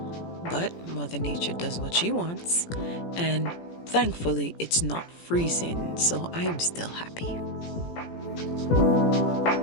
But Mother Nature does what she wants, and thankfully it's not freezing, so I'm still happy.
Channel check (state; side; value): late; right; 17 ms